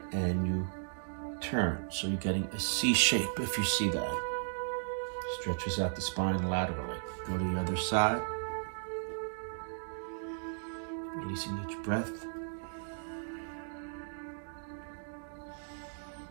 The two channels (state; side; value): silent; left; digital silence